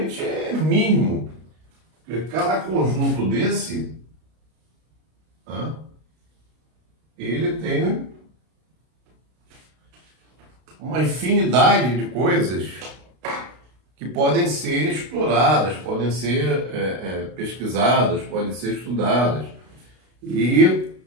é mínimo. Porque cada conjunto desse, tá? Ele tem uma infinidade de coisas que podem ser exploradas, podem ser pesquisadas, podem ser estudadas. E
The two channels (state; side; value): late; left; 32 ms